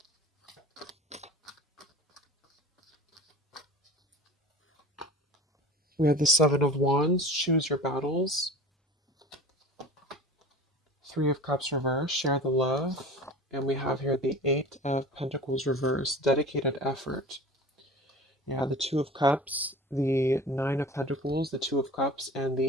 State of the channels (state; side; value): normal; both; correlation 0.38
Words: We have the Seven of Wands, choose your battles. Three of Cups reverse, share the love. And we have here the Eight of Pentacles reverse, dedicated effort. Yeah, the Two of Cups, the Nine of Pentacles, the Two of Cups, and